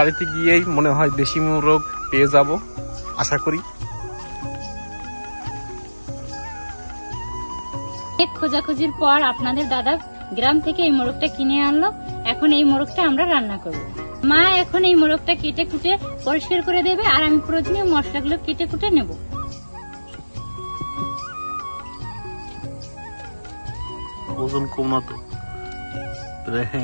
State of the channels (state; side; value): inverted; both; correlation -1.00